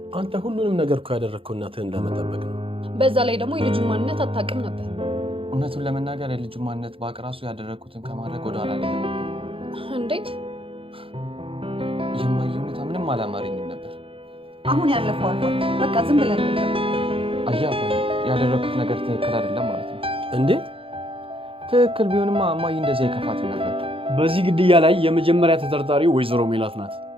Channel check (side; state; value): left; late; 0.26 ms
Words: አንተ ሁሉንም ነገር እኮ ያደረግከው እናትህን ለመጠበቅ ነው። በዛ ላይ ደግሞ የልጁን ማንነት አታውቅም ነበር። እውነቱን ለመናገር የልጁ ማንነት ባቅ ራሱ ያደረኩትን ከማድረግ ወደ ኋላ ላይ ነበር። እንዴት? የማየ ሁኔታ ምንም አላማረኝም ነበር። አሁን ያለፈው አልፏል። በቃ ዝም ብለን ነው። አያባ ያደረኩት ነገር ትክክል አይደለም ማለት ነው። እንዴት? ትክክል ቢሆንማ እማዬ እንደዚህ አይከፋትም ነበር። በዚህ ግድያ ላይ የመጀመሪያ ተጠርጣሪ ወይዘሮ ሜላት ናት።